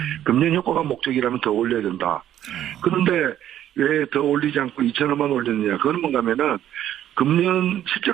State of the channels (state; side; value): quieter; left; 11.5 dB